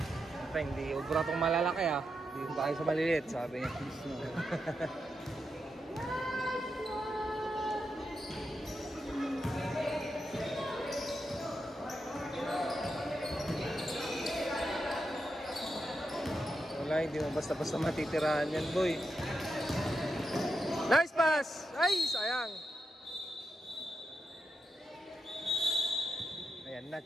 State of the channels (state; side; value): normal; both; correlation 0.86